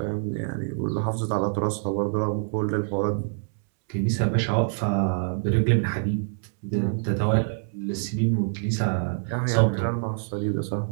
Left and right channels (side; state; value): left; silent; 61 dB below the other